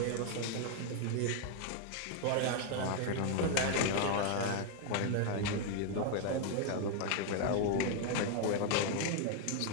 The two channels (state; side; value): different; both; correlation 0.00